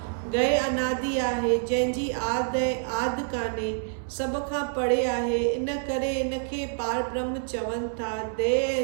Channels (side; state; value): left; silent; digital silence